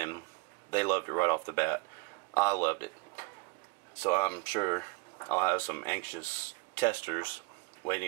they loved it right off the bat. I loved it. So I'm sure I'll have some anxious testers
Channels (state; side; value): quieter; left; 25.1 dB